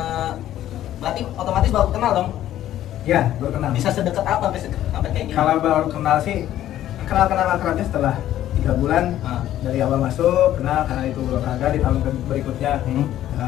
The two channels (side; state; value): right; quieter; 12.6 dB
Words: Berarti otomatis baru kenal dong? Ya, baru kenal. Bisa sedekat apa sampai kayak gini? Kalau baru kenal sih kenal akrabnya setelah 3 bulan dari awal masuk kenal karena itu olahraga. Di tahun berikutnya